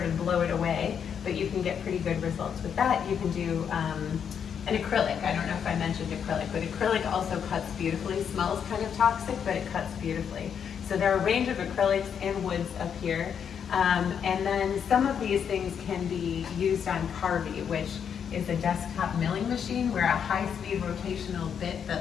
of blow it away, but you can get pretty good results with that. You can do an acrylic. I don't know if I mentioned acrylic, but acrylic also cuts beautifully. Smells kind of toxic, but it cuts beautifully. So there are a range of acrylics and woods up here. And then some of these things can be used on Carvey, which is a desktop milling machine where a high-speed rotational bit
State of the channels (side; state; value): right; quieter; 7.7 dB